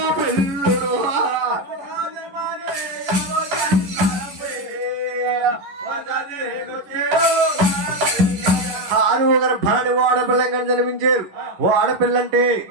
పిల్లుడు 6వ గర్భాన్ని వాడపిల్లంగా జన్మించారు. వాడపిల్ల అంటే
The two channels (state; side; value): late; left; 10 ms